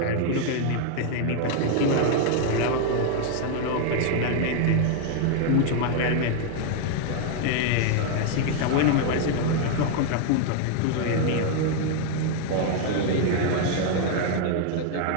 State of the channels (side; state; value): both; different; correlation 0.00